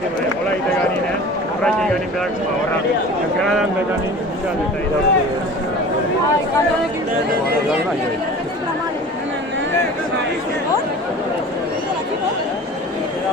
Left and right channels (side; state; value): both; normal; correlation 0.40